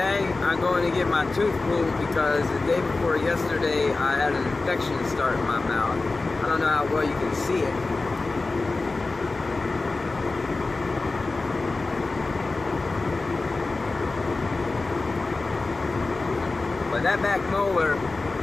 I'm going to get my tooth pulled because the day before yesterday I had an infection start in my mouth. I don't know how well you can see it. But that back molar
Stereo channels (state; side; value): quieter; right; 3.5 dB